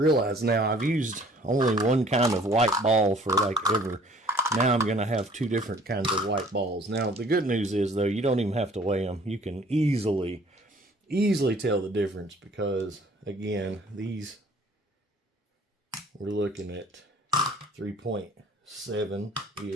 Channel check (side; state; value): both; normal; correlation 0.55